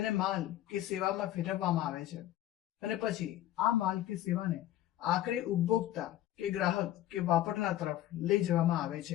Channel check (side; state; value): right; quieter; 13.6 dB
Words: માલ કે સેવામાં ફેરવવામાં આવે છે અને પછી આ માલ કે સેવાને આખરે ઉપભોક્તા કે ગ્રાહક કે વાપરનાર તરફ લઈ જવામાં આવે